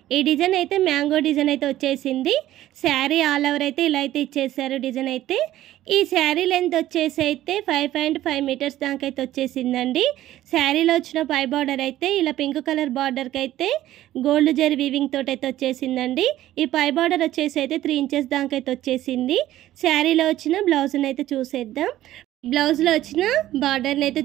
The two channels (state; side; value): quieter; left; 14.0 dB